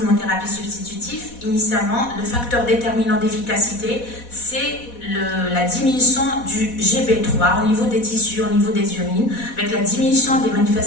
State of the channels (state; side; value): late; right; 4.1 ms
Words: substitutive. Initialement, le facteur déterminant d'efficacité, c'est la diminution du GB3 au niveau des tissus, au niveau des urines, avec la diminution des